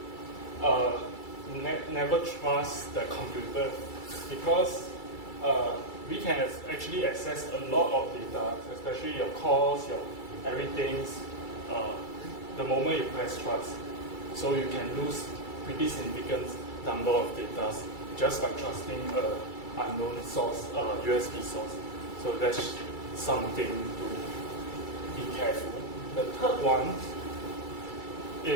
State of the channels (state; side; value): late; right; 2.3 ms